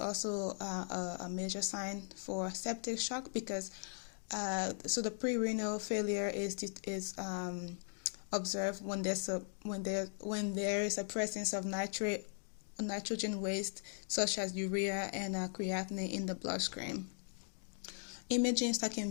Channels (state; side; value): silent; right; 52 dB below the other